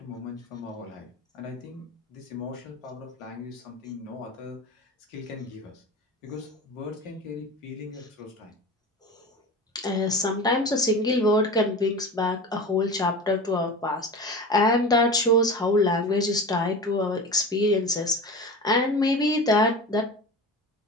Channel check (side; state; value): both; normal; correlation 0.31